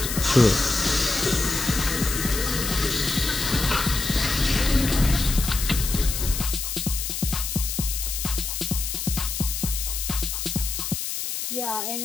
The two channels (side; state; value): left; noise; hiss, 3 dB below the sound